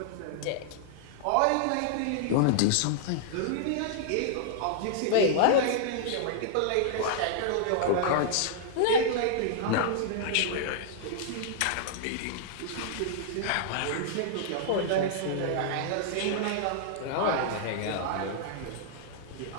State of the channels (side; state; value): both; different; correlation -0.01